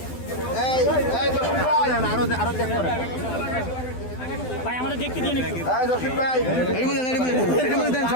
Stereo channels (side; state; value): right; late; 12 ms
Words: ভাই আমাদের দেখতে দিয়ে একটু